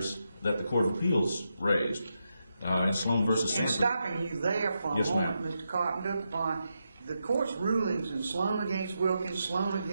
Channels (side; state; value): both; inverted; correlation -0.85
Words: that the Court of Appeals raised. In Sloan versus Sanford. And stopping you there for a moment, Mr. Carpenter, the court's rulings in Sloan against Wilkins, Sloan